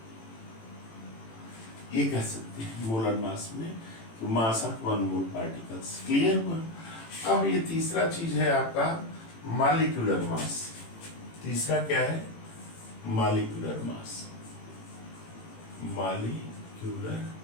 ये कह सकते हैं मोलर मास में कि mass of 1 mole particles. Clear हुआ। अब ये तीसरा चीज है आपका मॉलिक्यूलर मास। तीसरा क्या है, मॉलिक्यूलर मास। मॉलिक्यूलर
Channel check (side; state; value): right; late; 18 ms